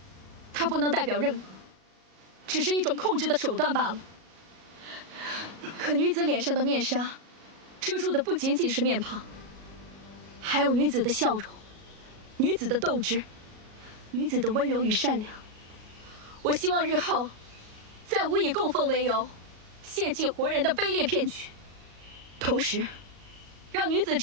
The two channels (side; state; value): left; late; 37 ms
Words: 它不能代表任何，只是一种控制的手段罢了。可女子脸上的面纱，遮住的不仅仅是面庞，还有女子的笑容。女子的斗志，女子的温柔与善良。我希望日后，再无以供奉为由，献祭活人的卑劣骗局，同时，让女子